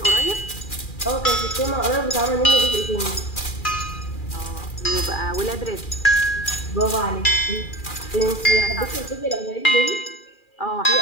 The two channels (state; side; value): late; right; 2.4 ms